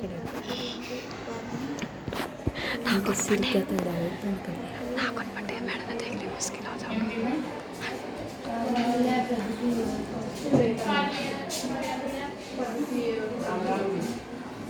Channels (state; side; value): identical; both; correlation 1.00